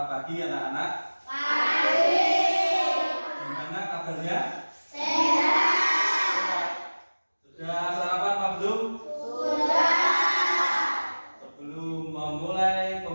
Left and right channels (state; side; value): inverted; both; correlation -1.00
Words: pagi anak-anak. Pagi. Gimana kabarnya? Sehat. Sudah sarapan Pak belum? Sudah. Sebelum memulai